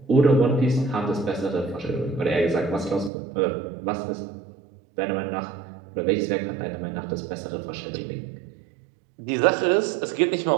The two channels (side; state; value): left; drops out; at 3.1 s